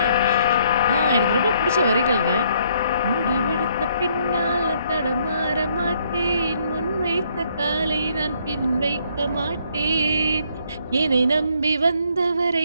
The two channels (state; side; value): inverted; both; correlation -0.68